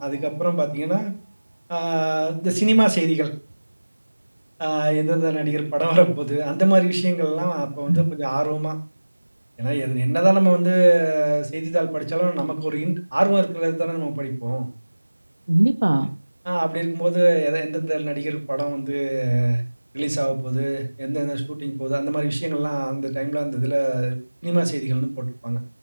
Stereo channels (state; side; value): inverted; both; correlation -1.00